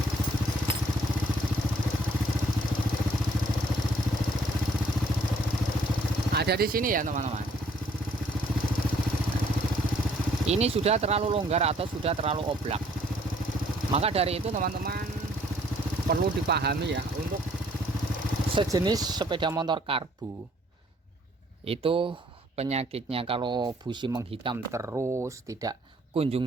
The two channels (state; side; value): normal; both; correlation 0.63